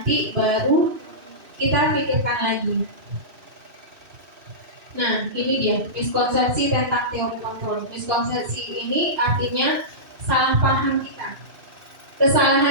baru kita pikirkan lagi. Nah, ini dia miskonsepsi tentang teori kontrol. Miskonsepsi ini artinya salah paham kita.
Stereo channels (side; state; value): left; late; 2.7 ms